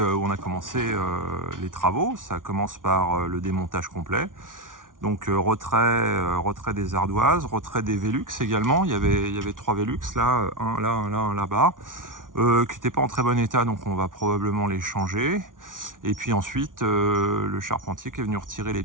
on a commencé les travaux. Ça commence par le démontage complet. Donc retrait des ardoises, retrait des Velux également. Il y avait 3 Velux là, un là, un là-bas, qui n'étaient pas en très bon état, donc on va probablement les changer. Et puis ensuite, le charpentier qui est venu retirer les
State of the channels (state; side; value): late; left; 0.88 ms